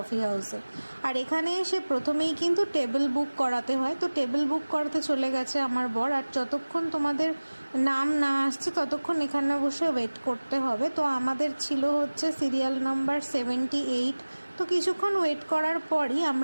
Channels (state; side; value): inverted; both; correlation -1.00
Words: হাউসে। আর এখানে এসে প্রথমেই কিন্তু টেবিল বুক করাতে হয়, তো টেবিল বুক করাতে চলে গেছে আমার বর। আর যতক্ষণ তোমাদের নাম না আসছে ততক্ষণ এখানে বসে ওয়েট করতে হবে। তো আমাদের ছিল হচ্ছে সিরিয়াল নাম্বার 78। তো কিছুক্ষণ ওয়েট করার পরই